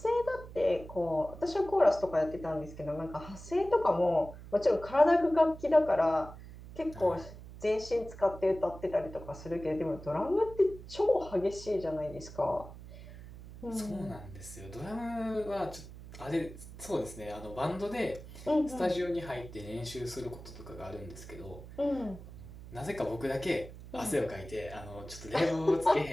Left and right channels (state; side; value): noise; right; hum, 15 dB below the sound